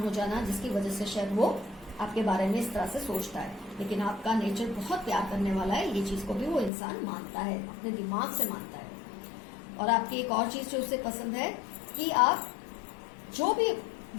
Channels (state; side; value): drops out; right; at 6.7 s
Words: हो जाना, जिसकी वजह से शायद वो आपके बारे में इस तरह से सोचता है। लेकिन आपका नेचर बहुत प्यार करने वाला है, ये चीज को भी वो इंसान मानता है, अपने दिमाग से मानता है। और आपकी एक और चीज जो उसे पसंद है कि आप जो भी